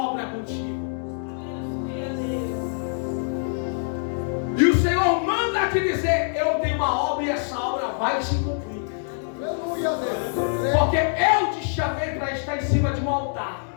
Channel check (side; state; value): right; silent; digital silence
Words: contigo. E o Senhor manda te dizer: eu tenho uma obra e essa obra vai se cumprir. Aleluia, Deus.